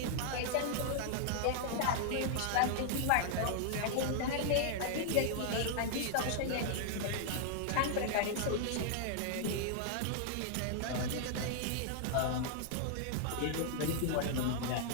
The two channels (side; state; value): both; different; correlation -0.01